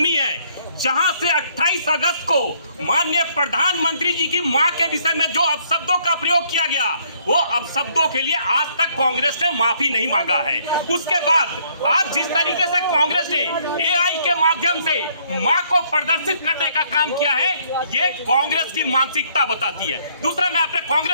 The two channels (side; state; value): both; inverted; correlation -0.66